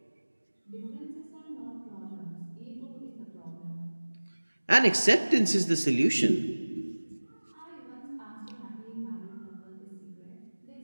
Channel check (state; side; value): inverted; both; correlation -1.00